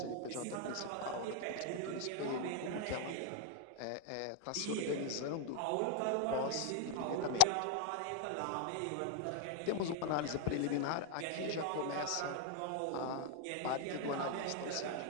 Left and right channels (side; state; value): both; different; correlation 0.00